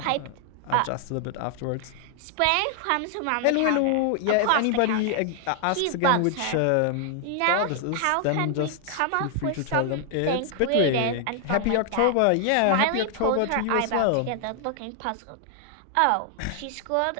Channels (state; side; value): different; both; correlation 0.00